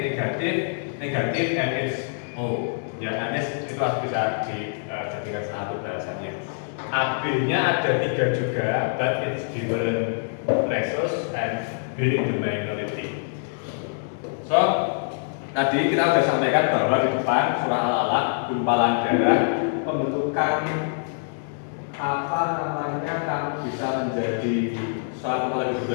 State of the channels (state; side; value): silent; right; 62 dB below the other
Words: and it's O. Ya, Anis itu harus bisa dijadikan satu balasannya. AB-nya ada 3 juga, but it's different ratios and being the minority. So, tadi kita sudah sampaikan bahwa di depan surah Al-Alaq, gumpalan darah, pembentukan apa namanya kan bisa menjadi suatu kepala